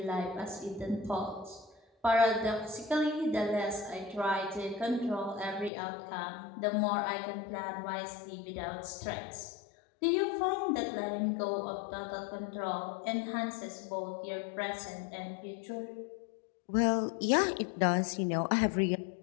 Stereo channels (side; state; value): right; drops out; at 5.7 s